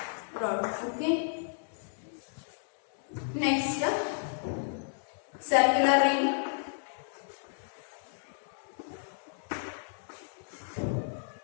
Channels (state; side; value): silent; right; digital silence